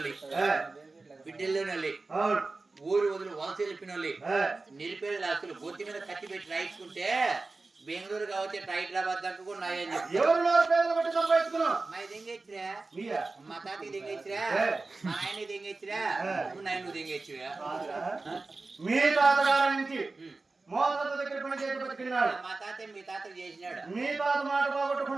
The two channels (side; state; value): left; quieter; 3.6 dB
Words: బిడ్డల్లోనోళ్ళు ఊరు వదిలి వలస వెళ్ళిపోయినోళ్ళు నిలిపేది ఆస్తులు గొత్తి మీద కత్తి పెట్టి రాయించుకుంటే బెంగళూరు కావచ్చు హైదరాబాద్ దాకా కూడా నాయని మా దింగెచ్చిరా మా తాతకి దింగెచ్చిరా మా ఆయనకి దింగెచ్చిరా నాయన దింగెచ్చువా మీ తాతగారి నుంచి దగ్గర పని చేసి బతికినాడు. మా తాత మీ తాతకు చేసినాడు. మీ తాత మాట